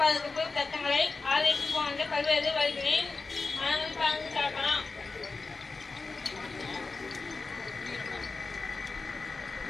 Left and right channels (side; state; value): right; quieter; 4.0 dB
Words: சட்டங்களை ஆதரித்து போன்ற பல்வேறு வழிகளில் மனங்கள் பங்கு சாக்கலாம்.